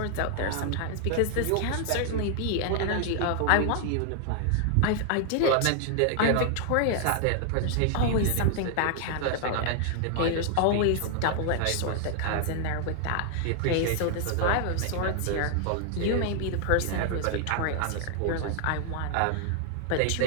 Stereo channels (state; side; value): different; both; correlation 0.00